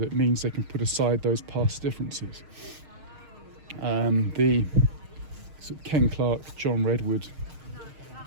means they can put aside those past differences? The Ken Clarke, John Redwood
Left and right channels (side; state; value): left; late; 6.5 ms